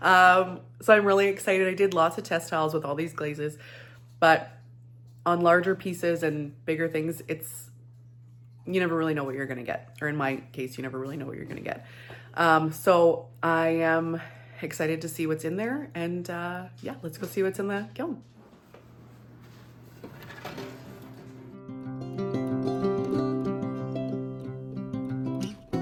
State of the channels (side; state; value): both; identical; correlation 1.00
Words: So I'm really excited. I did lots of test tiles with all these glazes, but on larger pieces and bigger things, you never really know what you're gonna get. Or in my case, you never really know what you're gonna get. So I am excited to see what's in there, and yeah, let's go see what's in the kiln.